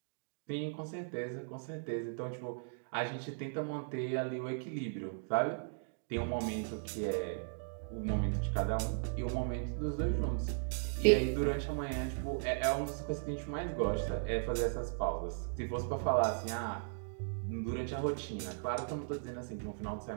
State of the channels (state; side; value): silent; left; digital silence